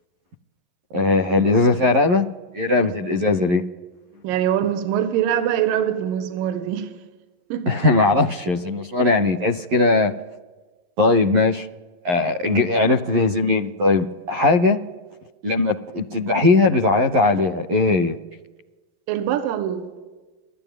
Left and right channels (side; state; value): left; late; 11 ms